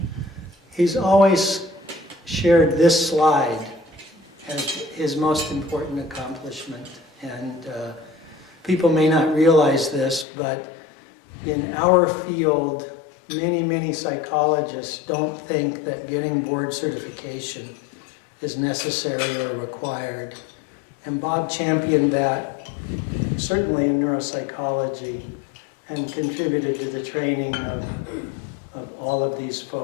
he's always shared this slide as his most important accomplishment. And people may not realize this, but in our field, many psychologists don't think that getting board certification is necessary or required. And Bob championed that, certainly in neuropsychology, and contributed to the training of all of these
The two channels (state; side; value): drops out; right; at 10.2 s